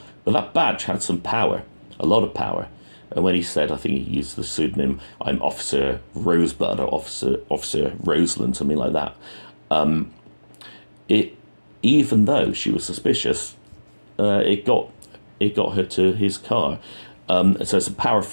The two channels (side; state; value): both; inverted; correlation -1.00